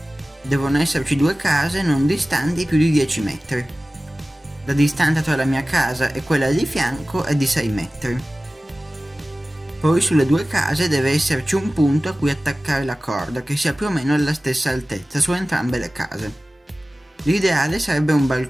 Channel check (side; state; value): both; normal; correlation 0.97